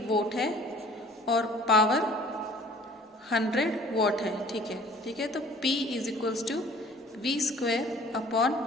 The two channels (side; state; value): both; normal; correlation 0.52